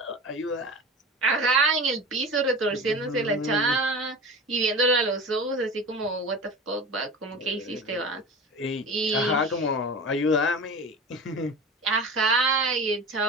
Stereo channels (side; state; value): both; normal; correlation 0.33